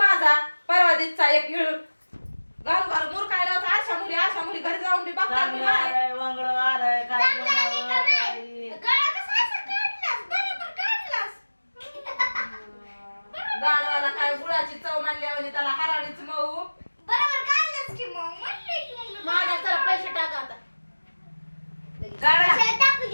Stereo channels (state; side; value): inverted; both; correlation -1.00